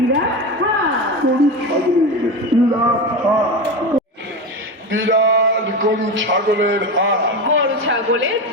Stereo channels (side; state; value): both; normal; correlation 0.21